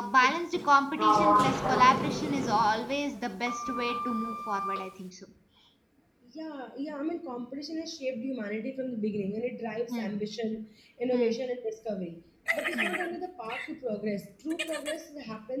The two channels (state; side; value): identical; both; correlation 1.00